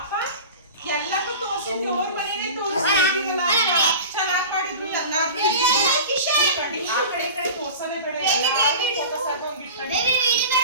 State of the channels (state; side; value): inverted; both; correlation -0.34